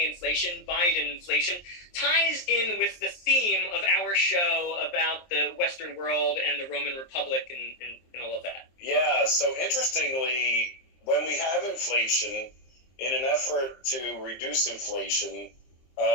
inflation, Biden inflation, ties in with the theme of our show about the Western world and the Roman Republic and all of that. Yeah, so interestingly, when we have inflation, in an effort to reduce inflation,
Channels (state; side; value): late; right; 23 ms